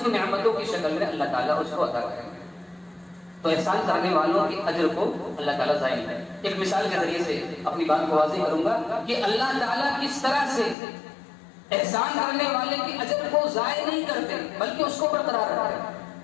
کی نعمتوں کی شکل میں اللہ تعالیٰ اس کو عطا کریں گے۔ تو احسان کرنے والوں کے اجر کو اللہ تعالیٰ ضائع نہیں کرے۔ ایک مثال کے ذریعے سے اپنی بات کو واضح کروں گا کہ اللہ تعالیٰ کس طرح سے احسان کرنے والے کے اجر کو ضائع نہیں کرتے بلکہ اس کو برقرار رکھتے ہیں۔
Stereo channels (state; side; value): drops out; right; at 10.8 s